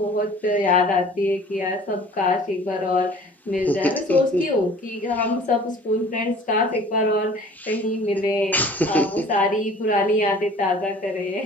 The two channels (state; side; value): normal; both; correlation 0.48